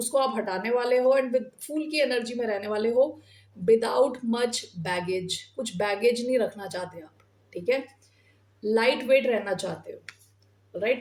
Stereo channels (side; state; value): both; identical; correlation 1.00